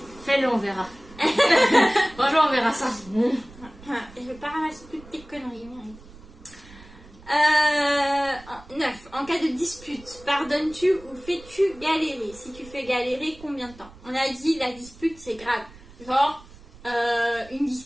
Fais-le, on verra. Bonjour, on verra ça. Je vais pas ramasser toutes tes conneries, merde. 9. En cas de dispute, pardonnes-tu ou fais-tu galérer? Si tu fais galérer, combien de temps? On a dit la dispute c'est grave. Genre, une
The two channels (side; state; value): right; noise; rumble, 21 dB below the sound